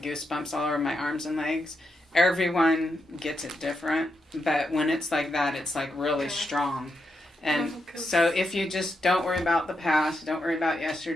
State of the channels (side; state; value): both; normal; correlation 0.84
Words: all over my arms and legs. Everyone gets it different, but when it's like that, it's like really strong. And so if you just don't worry about the past, don't worry about